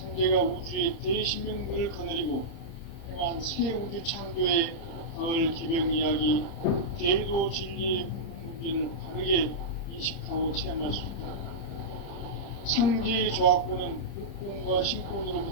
우주의 대신명들을 거느리고 행한 새 우주 창조의 가을 기병 이야기, 대도 진리의 문제를 바르게 인식하고 체험할 수 있다. 상제의 조화권은 복권과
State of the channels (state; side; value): late; right; 30 ms